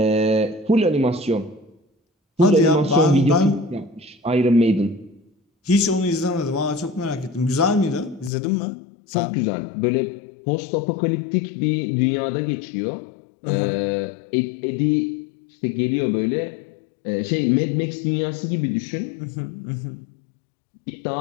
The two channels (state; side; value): drops out; right; at 8.3 s